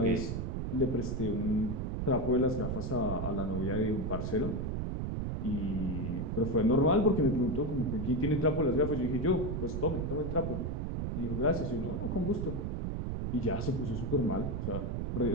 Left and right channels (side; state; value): right; noise; rumble, 2 dB below the sound